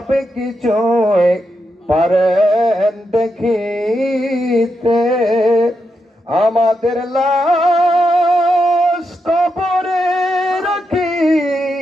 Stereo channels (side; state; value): both; normal; correlation 0.84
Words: কিছু পারেন দেখিতে আমাদের লাশ কবরে